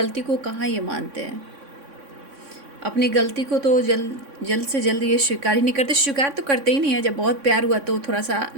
को कहाँ ये मानते हैं। अपनी गलती को तो जल्द से जल्द ये स्वीकार ही नहीं करते। स्वीकार तो करते ही नहीं है। जब बहुत प्यार हुआ तो थोड़ा सा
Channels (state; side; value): late; left; 3.6 ms